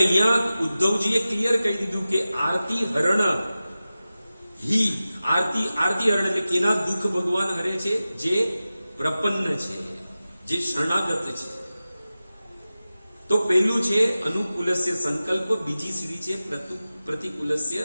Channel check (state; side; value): inverted; both; correlation -0.95